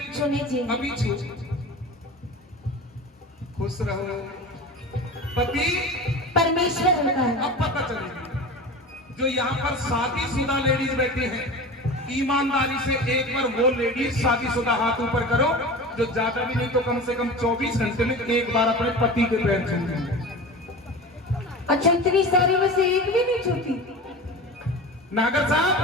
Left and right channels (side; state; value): both; normal; correlation 0.32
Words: छूने चाहिए। अभी छू। खुश रहो। पति परमेश्वर होता है। अब पता चलेगी। जो यहाँ पर शादीशुदा लेडीज बैठी हैं, ईमानदारी से एक बार वो लेडीज शादीशुदा हाथ ऊपर करो जो ज्यादा भी नहीं तो कम से कम 24 घंटे में एक बार अपने पति के पैर छूते। अच्छा, इतनी सारी में से एक भी नहीं छूती? नागर साहब,